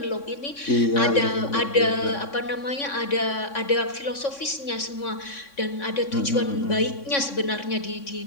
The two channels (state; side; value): late; right; 3.6 ms